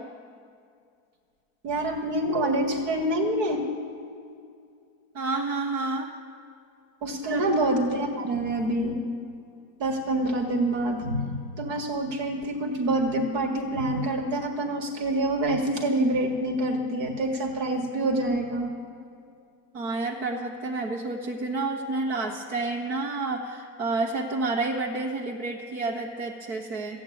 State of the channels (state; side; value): late; left; 4.7 ms